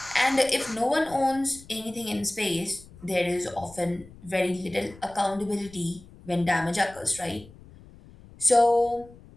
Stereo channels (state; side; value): noise; left; rumble, 21 dB below the sound